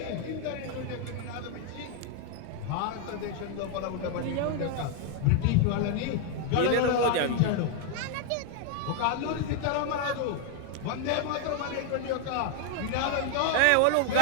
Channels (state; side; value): different; both; correlation 0.00